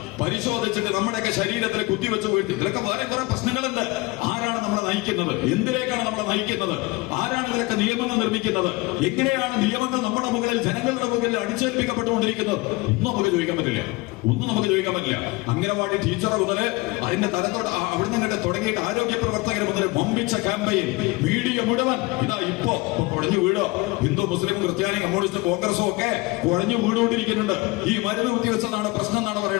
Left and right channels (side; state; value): right; quieter; 23.4 dB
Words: പരിശോധിച്ചിട്ട് നമ്മുടെയൊക്കെ ശരീരത്തിൽ കുത്തിവെച്ച് വീഴ്ത്തി. ഇതിലൊക്കെ വേറെ കുറെ പ്രശ്നങ്ങളുണ്ട്. ആരാണ് നമ്മളെ നയിക്കുന്നത്? എന്തിലേക്കാണ് നമ്മളെ നയിക്കുന്നത്? ആരാണ് ഇതിലൊക്കെ നിയമങ്ങൾ നിർമ്മിക്കുന്നത്? എങ്ങനെയാണ് നിയമങ്ങൾ നമ്മുടെ മുകളിൽ, ജനങ്ങളുടെ മുകളിൽ അടിച്ചേൽപ്പിക്കപ്പെട്ടുകൊണ്ടിരിക്കുന്നത്? ഒന്നും നമുക്ക് ചോദിക്കാൻ പറ്റില്ല. അംഗനവാടി ടീച്ചറെ മുതല് അതിന്റെ തലത്തോട് അവിടുന്ന് കണ്ട് തുടങ്ങിയിട്ട് ആരോഗ്യ പ്രവർത്തകർ മുതൽ വമ്പിച്ച ക്യാമ്പയിൻ, മീഡിയ മുഴുവൻ ഇതാ ഇപ്പോ കുഴഞ്ഞു വീടോ, ഹിന്ദു മുസ്ലിം ക്രിസ്ത്യാനി കമ്മ്യൂണിസ്റ്റ് കോൺഗ്രസും ഒക്കെ കുഴഞ്ഞു വീടുകൊണ്ടിരിക്കുന്നുണ്ട്. ഈ മരുന്ന് കുത്തിവെച്ചതാണ് പ്രശ്നം എന്നാണ്